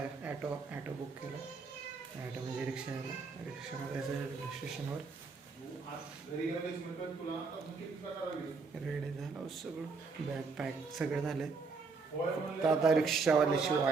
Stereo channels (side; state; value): left; quieter; 4.6 dB